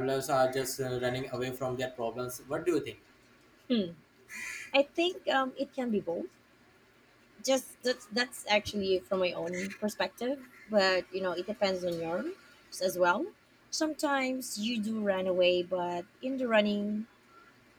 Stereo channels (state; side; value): identical; both; correlation 1.00